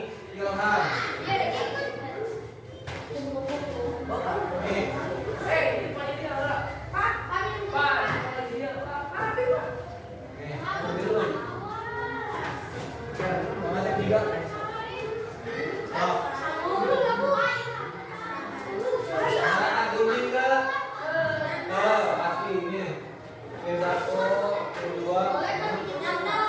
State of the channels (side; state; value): both; identical; correlation 1.00